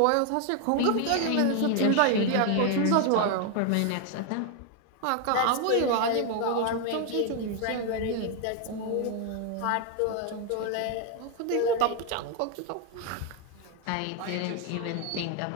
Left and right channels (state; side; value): different; both; correlation 0.01